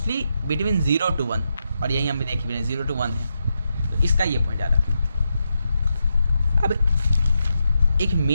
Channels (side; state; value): both; inverted; correlation -0.85